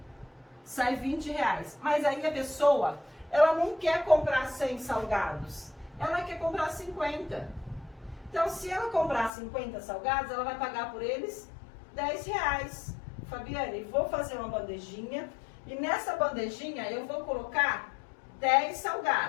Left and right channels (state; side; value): drops out; right; at 9.3 s